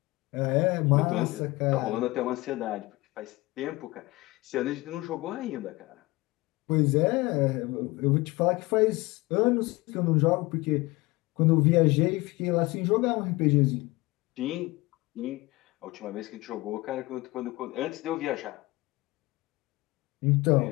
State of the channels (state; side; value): quieter; right; 21.7 dB